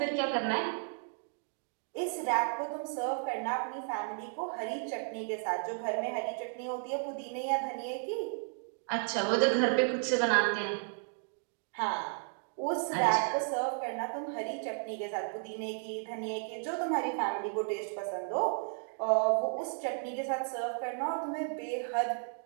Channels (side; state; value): left; silent; 55 dB below the other